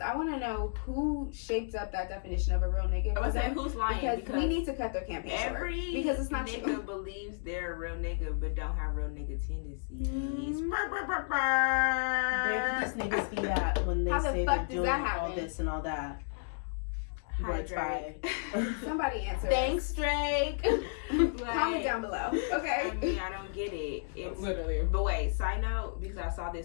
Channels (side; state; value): right; silent; digital silence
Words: I want to know who shaped up that definition of a real nigga. I was saying who's lying, because we need to cut their campaign short. Because it's not nigga true. believes they're a real nigga but don't have real nigga tendencies. Where did these niggas be at when they say they're doing all this and all that? Hi, Drake. Somebody answer. Thanks, Drake. Comment down below. Okay. I mean, I don't get it. It's literally. But wait, side note, because I saw